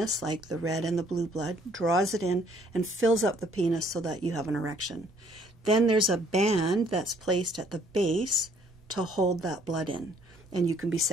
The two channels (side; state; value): both; normal; correlation 0.62